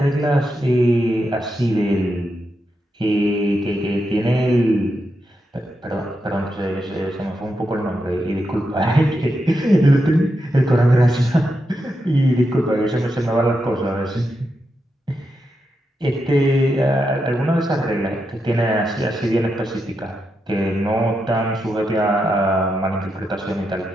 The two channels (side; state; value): both; normal; correlation 0.85